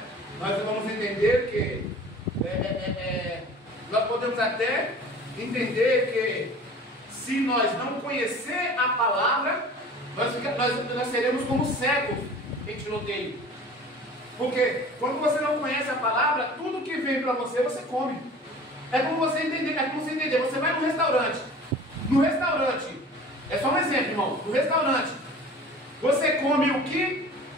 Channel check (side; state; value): both; normal; correlation 0.43